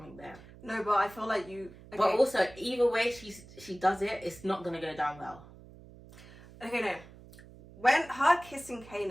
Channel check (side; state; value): right; noise; hum, 20 dB below the sound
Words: there. No, but I feel like you... Okay. But also, either way she does it, it's not going to go down well. Okay, no. When her kissing